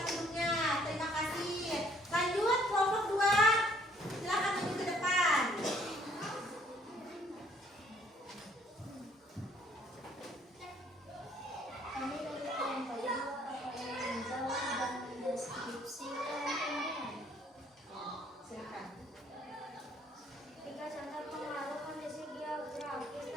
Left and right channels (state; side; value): normal; both; correlation 0.62